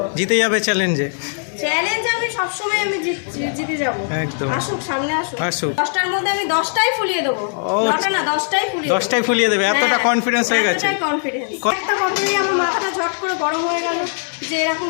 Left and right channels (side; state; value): right; silent; digital silence